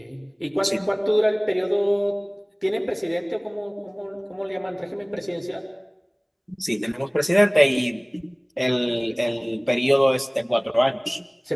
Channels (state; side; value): identical; both; correlation 1.00